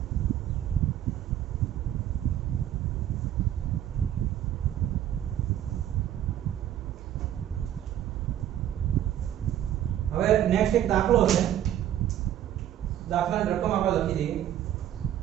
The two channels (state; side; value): quieter; left; 11.4 dB